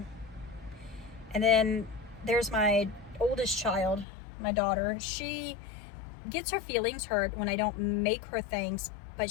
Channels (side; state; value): right; drops out; at 4.0 s